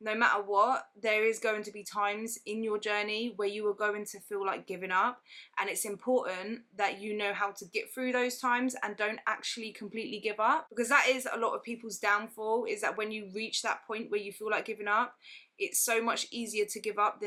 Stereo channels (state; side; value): identical; both; correlation 1.00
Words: matter what, there is going to be times in your journey where you are going to feel like giving up. And it's important that you know how to get through those times and don't actually completely give up, because that is a lot of people's downfall, is that when you reach that point where you feel like giving up, it's so much easier to give up